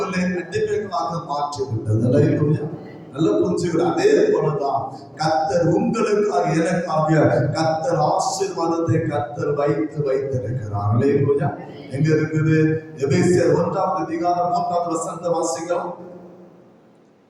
அடிமைகளாக மாற்றிவிட்டது. அல்லேலூயா, நல்லா புரிஞ்சுக்கிற. அதே போலதான் கர்த்தர் உங்களுக்காக எனக்காக கர்த்தர் ஆசீர்வாதத்தை கர்த்தர் வைத்திருக்கிறார். அல்லேலூயா, எங்க இருக்குது? எபேசியர் 1வது அதிகாரம் 3வது வசனத்தை வாசிக்கலாம்.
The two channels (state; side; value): identical; both; correlation 1.00